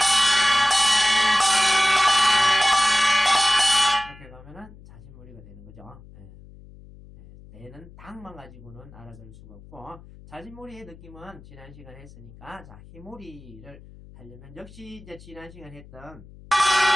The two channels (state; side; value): noise; left; hum, 20 dB below the sound